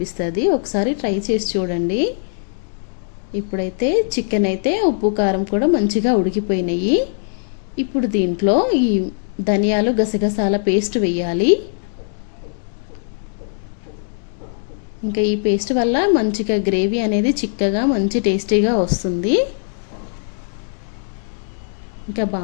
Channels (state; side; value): silent; right; digital silence